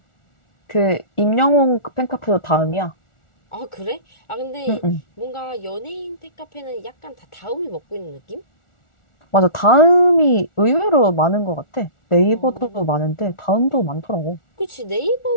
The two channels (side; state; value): right; late; 1.4 ms